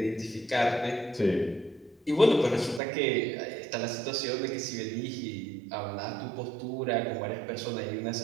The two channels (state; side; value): drops out; left; at 2.8 s